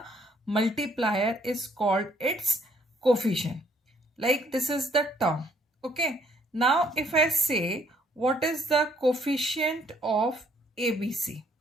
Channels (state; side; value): normal; both; correlation 0.66